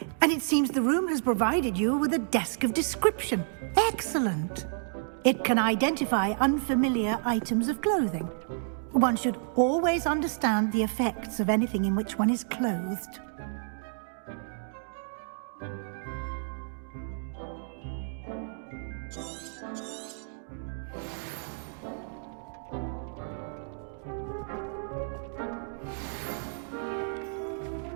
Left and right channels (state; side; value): silent; left; digital silence